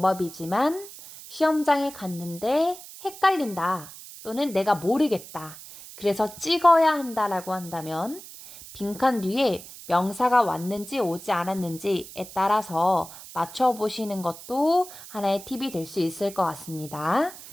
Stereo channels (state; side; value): noise; right; hiss, 15 dB below the sound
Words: 시험장에 갔는데 헷갈린다 또는 내가 모르겠다. 그래서 찍어야 한다라고 한다면 빈칸 뒤에 명사가 왔는지 오지 않았는지에 따라서 맞춰보시는 것도 하나의 팁이 될 수 있을 것 같습니다.